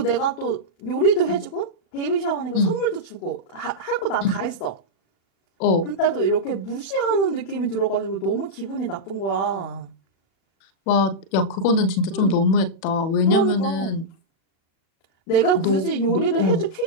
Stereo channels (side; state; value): right; late; 37 ms